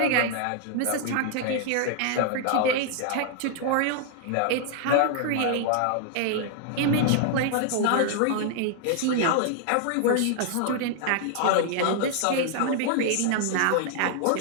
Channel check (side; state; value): both; different; correlation 0.00